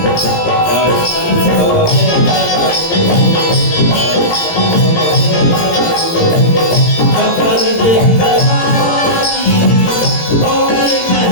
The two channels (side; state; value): right; late; 17 ms